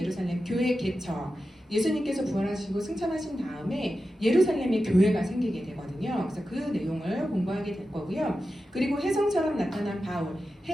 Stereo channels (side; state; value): both; normal; correlation 0.92